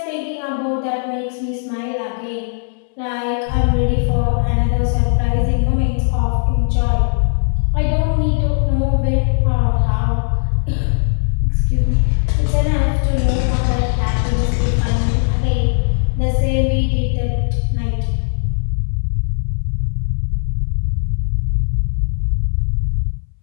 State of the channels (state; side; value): silent; right; 63 dB below the other